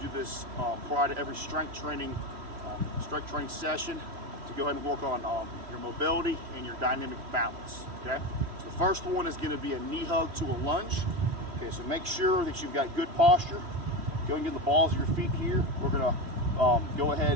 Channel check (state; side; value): late; left; 3.1 ms